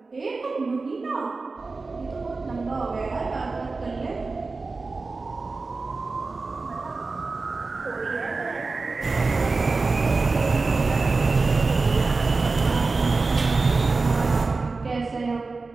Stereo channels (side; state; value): left; quieter; 3.9 dB